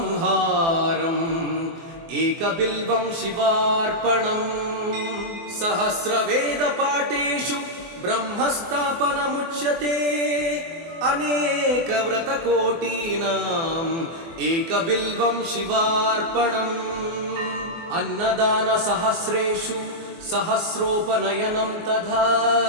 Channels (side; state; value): left; late; 24 ms